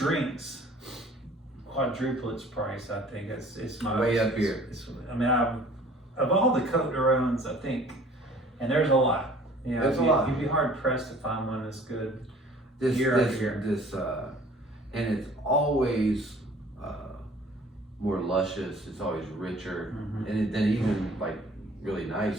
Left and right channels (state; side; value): normal; both; correlation 0.51